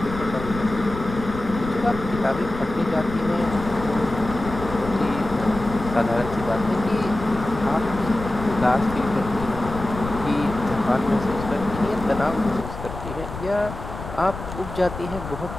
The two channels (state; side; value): noise; left; rumble, 10 dB below the sound